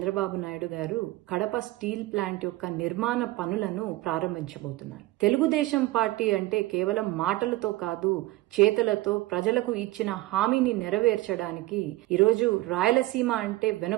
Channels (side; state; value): left; quieter; 18.5 dB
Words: నాయుడు గారు కడప స్టీల్ ప్లాంట్ యొక్క నిర్మాణ పనులను ప్రారంభించబోతున్నారు. తెలుగుదేశం పార్టీ అంటే కేవలం మాటలతో కాదు, చేతులతో ప్రజలకు ఇచ్చిన హామీని నెరవేర్చడానికి ఈరోజు రాయలసీమ అంటే